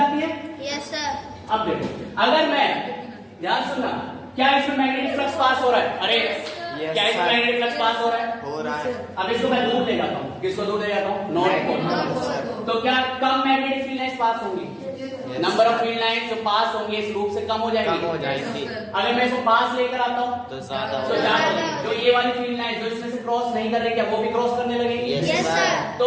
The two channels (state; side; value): identical; both; correlation 1.00